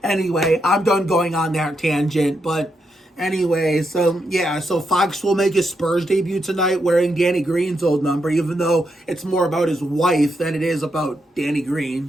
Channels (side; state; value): both; normal; correlation 0.82